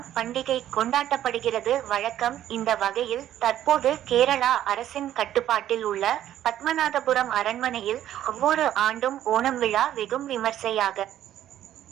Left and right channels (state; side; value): quieter; left; 11.9 dB